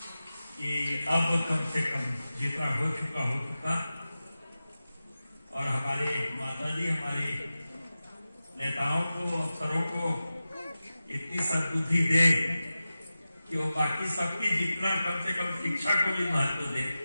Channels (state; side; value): inverted; both; correlation -0.94